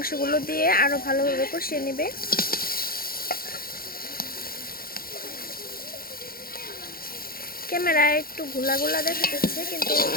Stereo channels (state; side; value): late; right; 0.43 ms